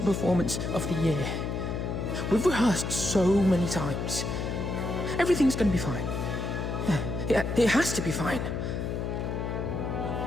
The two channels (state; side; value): noise; left; hum, 2 dB below the sound